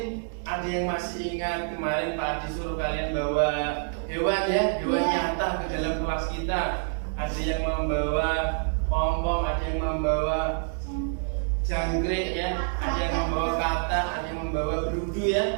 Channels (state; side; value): silent; left; digital silence